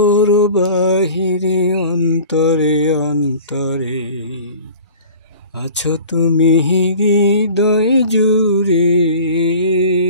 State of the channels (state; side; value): inverted; both; correlation -0.43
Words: বাহিরে অন্তরে অন্তরে আছো তুমি হৃদয় জুড়ে।